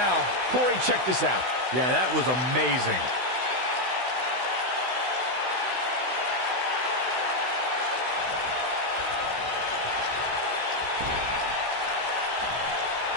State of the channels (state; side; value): late; left; 16 ms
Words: Corey, check this out. Yeah, that was amazing.